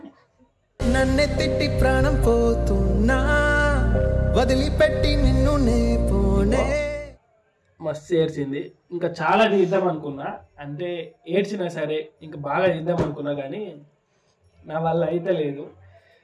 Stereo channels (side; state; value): both; identical; correlation 1.00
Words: నన్నే తిట్టి ప్రాణం పోతున్నా, వదిలిపెట్టి నిన్ను నే పోనే. మస్తు ఏడ్చింది. ఇంకా చాలా తీద్దాం అనుకున్నా, అంటే ఏడ్చినా సరే ఇంకా బాగా తీద్దాం అనుకున్నా, కానీ నా వల్ల అయితే లేదు.